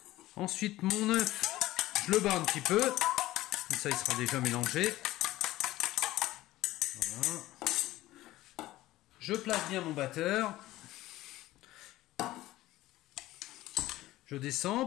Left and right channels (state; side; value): quieter; right; 16.5 dB